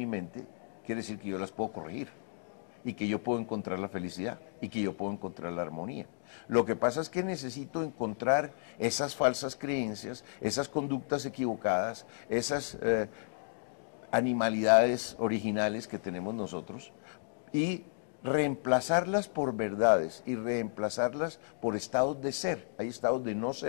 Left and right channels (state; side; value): silent; right; digital silence